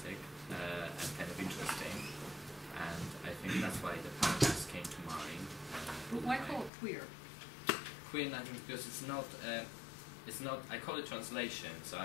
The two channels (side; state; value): right; drops out; at 6.7 s